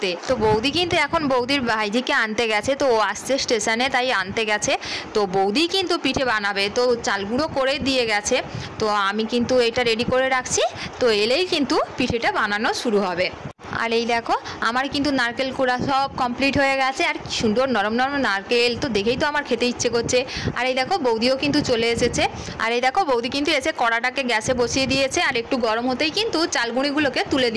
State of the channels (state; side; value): identical; both; correlation 1.00